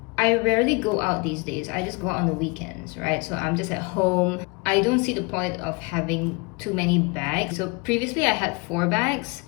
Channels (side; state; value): right; quieter; 28.8 dB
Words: rarely go out these days. I just go out on the weekends, right? So I'm just at home. I don't see the point of having too many bags. So previously I had 4 bags.